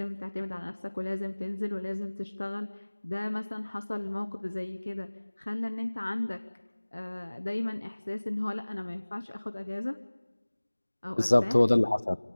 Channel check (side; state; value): both; inverted; correlation -1.00